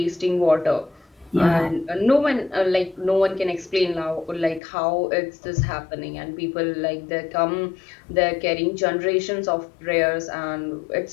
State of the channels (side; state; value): right; drops out; at 4.6 s